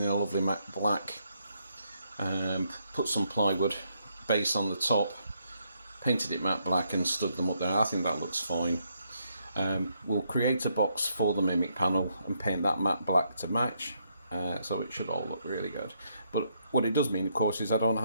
a lovely matte black, put some plywood base on the top, painted it matte black and stood them up there. I think that looks fine. We'll create a box for the Mimic panel and paint that matte black to match, so it should all look really good. But what it does mean, of course, is I don't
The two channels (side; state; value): both; inverted; correlation -0.76